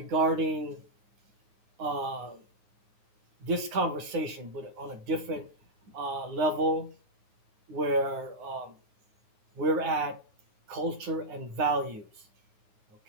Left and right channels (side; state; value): left; late; 9.5 ms